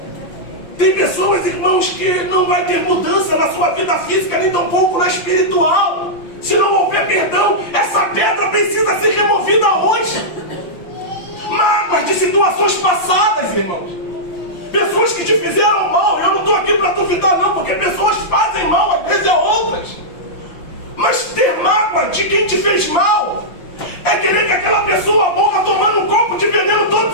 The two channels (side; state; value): right; late; 5.8 ms